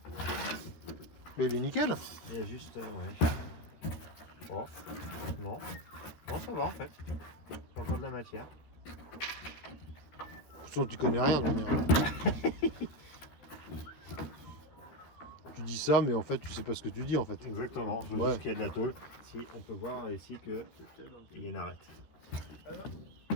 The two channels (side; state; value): right; late; 13 ms